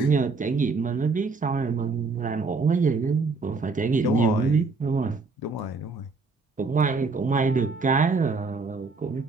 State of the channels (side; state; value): left; quieter; 4.2 dB